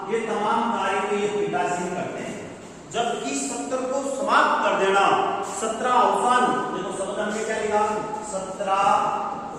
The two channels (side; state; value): both; identical; correlation 1.00